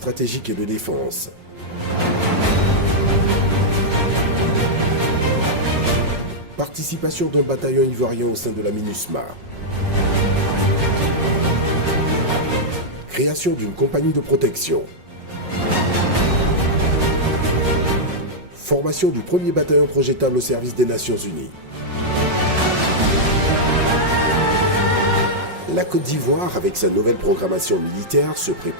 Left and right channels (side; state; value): left; late; 5.5 ms